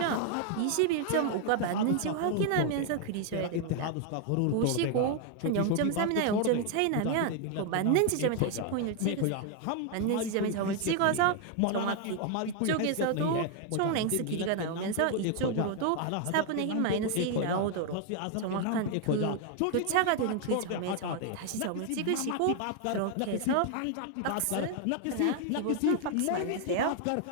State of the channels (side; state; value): both; different; correlation 0.00